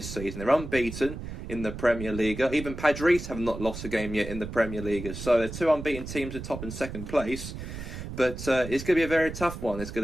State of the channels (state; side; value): noise; right; rumble, 9 dB below the sound